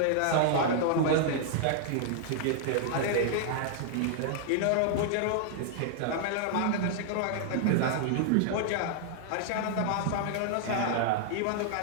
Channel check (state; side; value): different; both; correlation -0.01